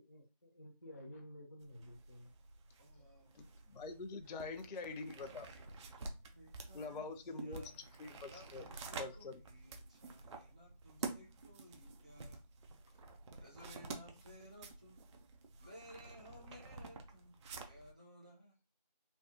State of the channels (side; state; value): both; inverted; correlation -0.36